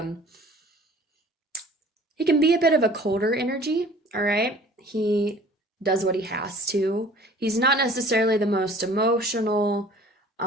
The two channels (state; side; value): normal; both; correlation 0.49